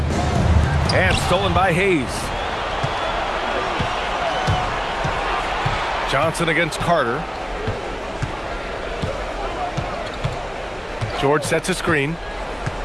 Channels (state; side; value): identical; both; correlation 1.00